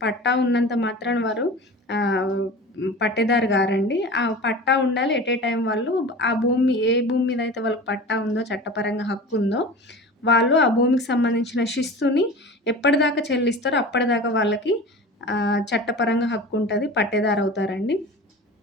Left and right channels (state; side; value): normal; both; correlation 0.35